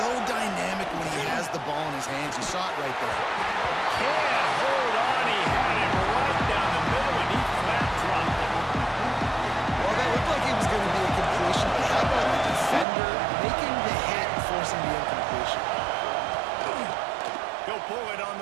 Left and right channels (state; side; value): drops out; left; at 12.9 s